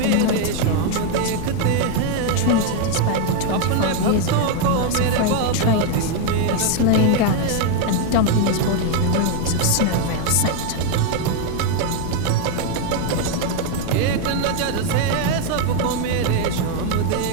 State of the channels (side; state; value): both; different; correlation 0.01